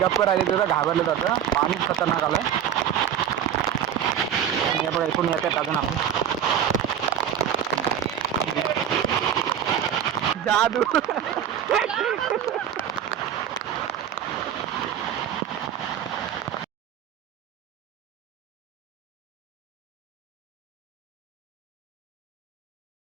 गप्प राहिले, त्याचं घाबरलं जातं. पाणीच खतरनाक आलंय. हे बघा इकडून येतात अजून आपण जादू.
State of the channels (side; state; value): left; quieter; 9.4 dB